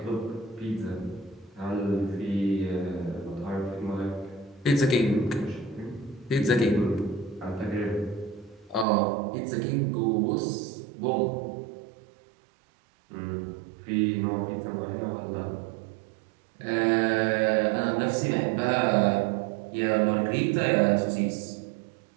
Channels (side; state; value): left; drops out; at 8.8 s